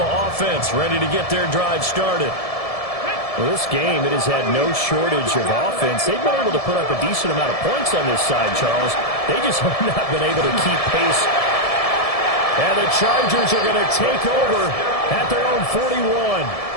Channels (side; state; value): right; late; 1.7 ms